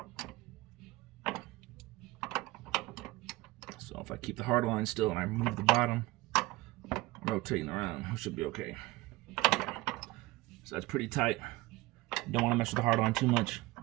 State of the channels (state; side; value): quieter; left; 20.0 dB